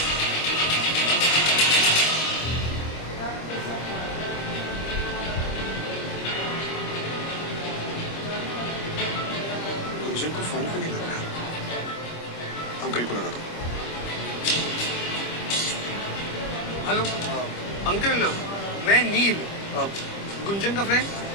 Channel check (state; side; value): late; right; 25 ms